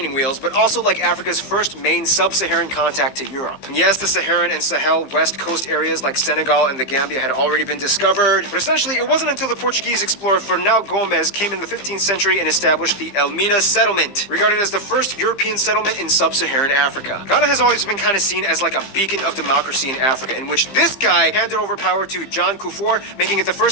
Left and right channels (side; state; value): right; late; 15 ms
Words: wheels, but also like Africa's first main sub-Saharan contact to Europe. And yes, the Saharan and Sahel West Coast areas like Senegal and the Gambia had already been discovered, but essentially it wasn't until the Portuguese explorer Fernão Gomes came in the 15th century and established the Mina settlement, regarded as the first European settlement in sub-Saharan Africa. Ghana has always been kind of seen as like a beacon of democracy in Africa, in which this guy handed over power to John Kufuor, making it the